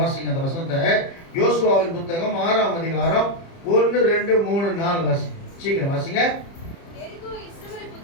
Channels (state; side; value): late; right; 30 ms